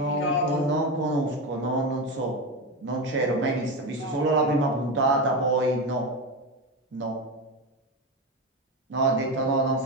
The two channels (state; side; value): normal; both; correlation 0.17